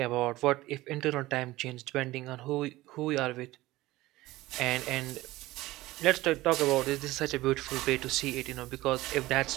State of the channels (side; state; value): left; quieter; 18.1 dB